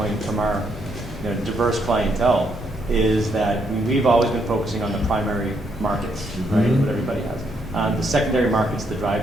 from our diverse clientele is that we've always been focusing on the primary markets, right, what everybody has. The secondary markets, the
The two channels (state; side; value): normal; both; correlation 0.75